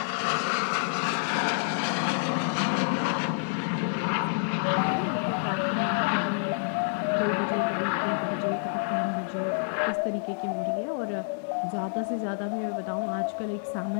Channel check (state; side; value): silent; right; digital silence